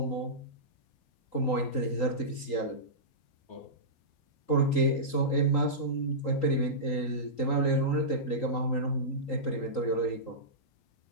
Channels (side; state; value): right; late; 3.8 ms